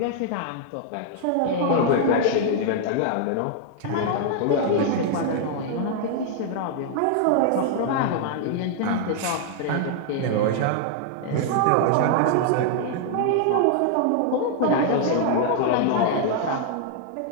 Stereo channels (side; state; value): both; different; correlation 0.00